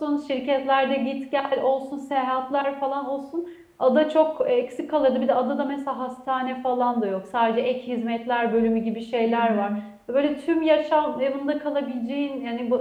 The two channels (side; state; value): both; identical; correlation 1.00